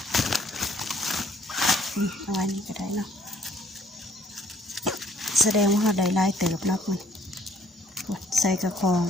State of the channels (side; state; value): both; normal; correlation 0.62